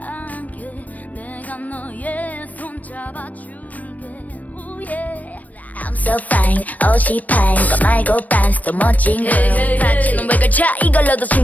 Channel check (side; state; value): right; late; 0.074 ms